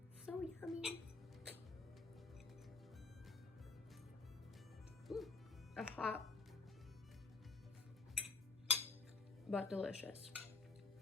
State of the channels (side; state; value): right; quieter; 3.8 dB